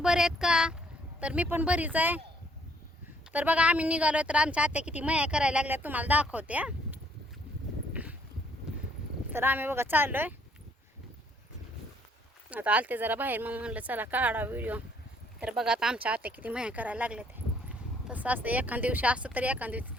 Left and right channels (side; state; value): both; normal; correlation 0.65